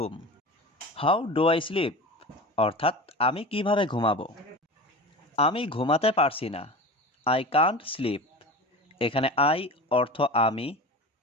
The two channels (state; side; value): normal; both; correlation 0.31